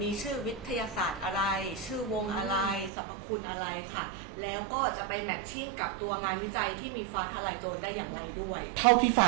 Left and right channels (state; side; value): drops out; left; at 2.9 s